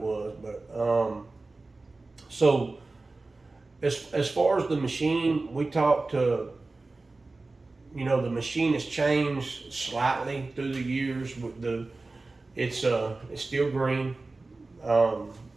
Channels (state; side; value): quieter; left; 3.4 dB